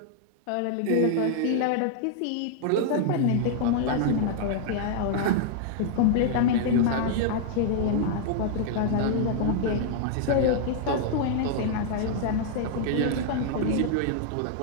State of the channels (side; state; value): both; different; correlation -0.01